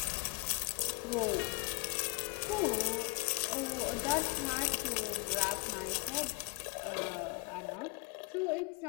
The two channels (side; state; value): right; quieter; 28.8 dB